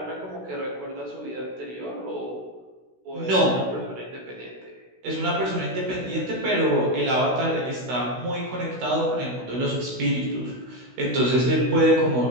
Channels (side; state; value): left; late; 16 ms